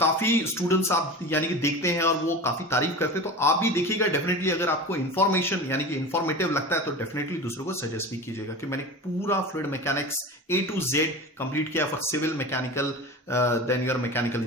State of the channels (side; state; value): both; normal; correlation 0.31